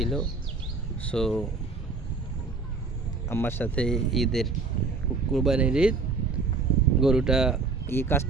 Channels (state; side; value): quieter; left; 4.2 dB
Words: সো আমার সাথে ঈদের কুরবানির ঈদ গরুটা কাজ